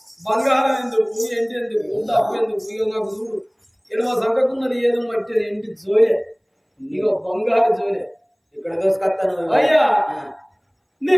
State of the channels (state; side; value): identical; both; correlation 1.00